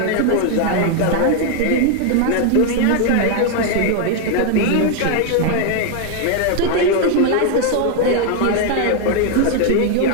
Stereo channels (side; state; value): both; different; correlation 0.00